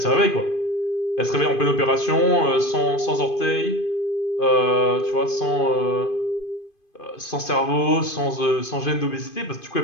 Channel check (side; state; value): right; late; 2.5 ms